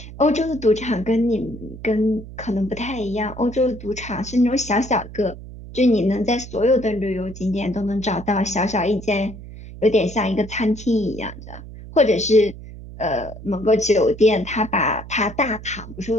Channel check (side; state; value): right; noise; hum, 14 dB below the sound